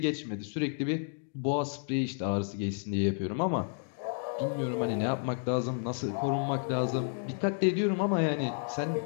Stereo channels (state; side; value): silent; right; 57 dB below the other